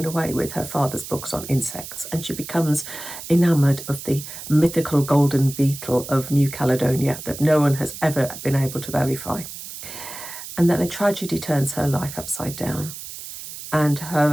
away with her father's books on insects, and she becomes enamoured of the mythical golden beetle of New Caledonia that no one has ever been able to verify. And then a tragedy turns her life upside down, and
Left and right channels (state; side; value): noise; right; hiss, 11 dB below the sound